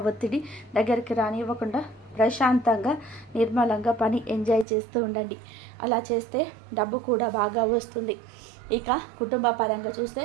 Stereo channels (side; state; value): left; drops out; at 4.7 s